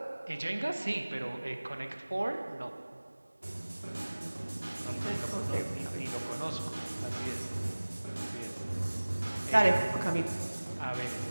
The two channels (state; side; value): inverted; both; correlation -1.00